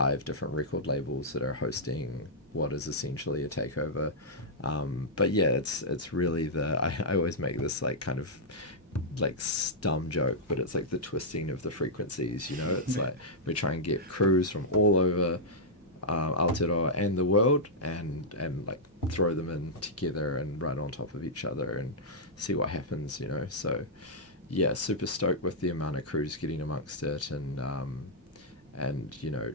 different record labels that are hosting what is essentially a takeover. But yeah, it's really I always make this like kind of like dumb joke, but it's like the twisting of the frequencies. You know, it's like we try and get crews from all over Aotearoa and the world, and like throw them in together and run on top of each other and see what happens. You know, so yeah, super stoked with the amount of crews getting amongst it, and you know,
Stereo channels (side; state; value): both; normal; correlation -0.09